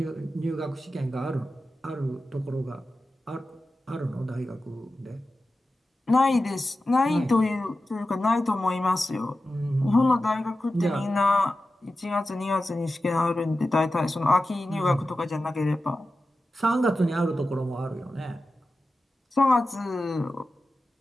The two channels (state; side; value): normal; both; correlation 0.93